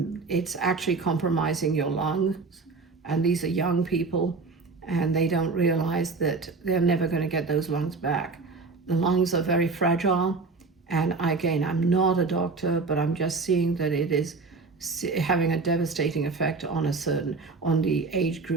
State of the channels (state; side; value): quieter; left; 4.1 dB